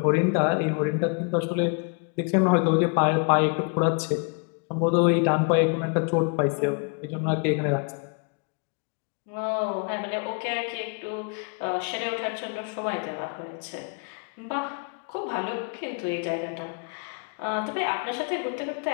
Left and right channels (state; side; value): quieter; right; 37.5 dB